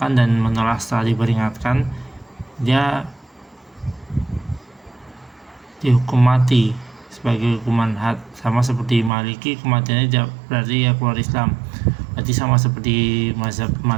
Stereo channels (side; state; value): left; drops out; at 9.1 s